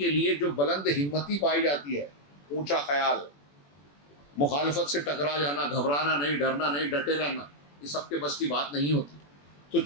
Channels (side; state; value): right; late; 21 ms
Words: لیے جو بلند ہمتی پائی جاتی ہے، اونچا خیال، مخالفت سے ٹکرا جانا، گھبرانا نہیں، ڈرنا نہیں، ڈٹے رہنا، یہ سب کے بس کی بات نہیں ہوتی۔ تو